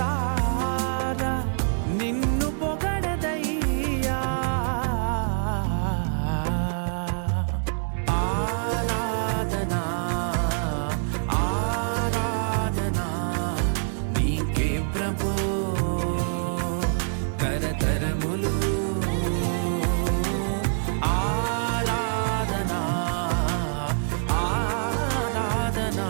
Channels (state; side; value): silent; left; digital silence